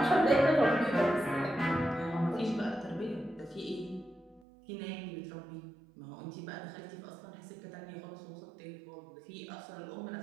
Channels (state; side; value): drops out; left; at 4.5 s